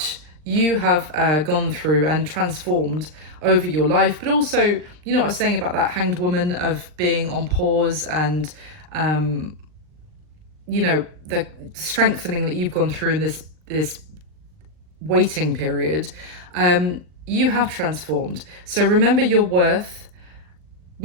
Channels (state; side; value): late; left; 39 ms